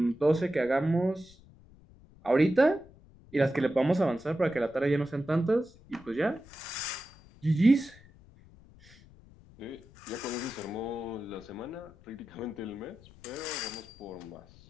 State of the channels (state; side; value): noise; left; rumble, 24 dB below the sound